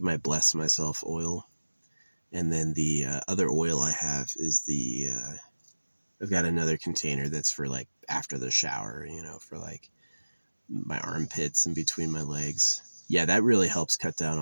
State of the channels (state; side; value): inverted; both; correlation -1.00